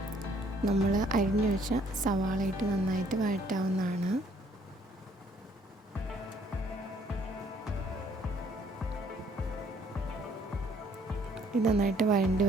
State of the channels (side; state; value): both; normal; correlation 0.63